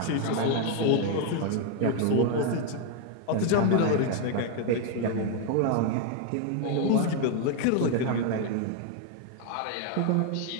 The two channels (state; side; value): different; both; correlation 0.01